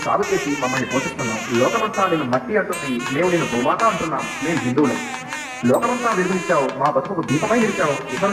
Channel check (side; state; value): both; identical; correlation 1.00